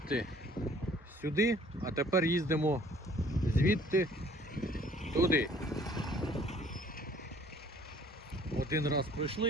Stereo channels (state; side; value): normal; both; correlation 0.56